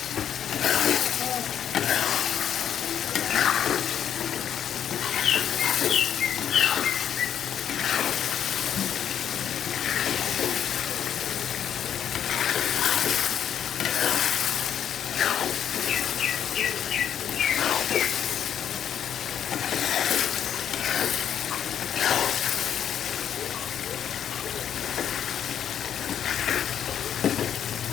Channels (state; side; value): quieter; right; 9.2 dB